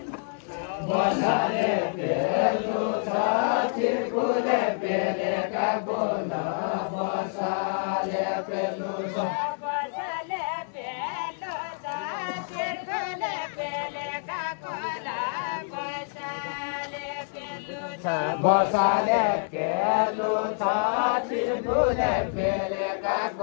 बसाले पेलु छ किरकुले पेले काकोल बसाले पेलु छ बसाले पेलु छ चिरकुले पेले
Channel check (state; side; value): silent; right; digital silence